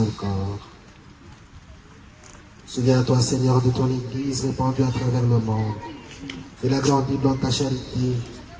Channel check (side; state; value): both; identical; correlation 1.00